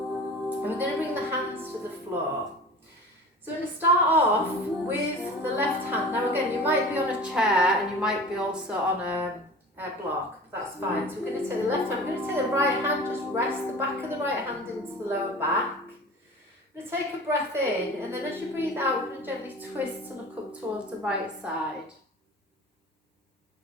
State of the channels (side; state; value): both; normal; correlation 0.38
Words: and we're going to bring the hands to the floor. So we're going to start off with the left hand. Now again, you might be on a chair and you might be also on a block, that's fine. So we're going to take the left hand, we're going to take the right hand, just rest the back of the right hand into the lower back. We're going to take a breath in, and then as you breathe out, we're going to gently twist to look up towards the right side.